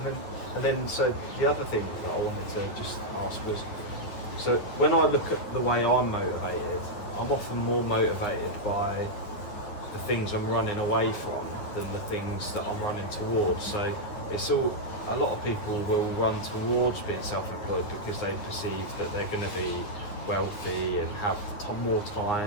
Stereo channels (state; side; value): late; right; 9.7 ms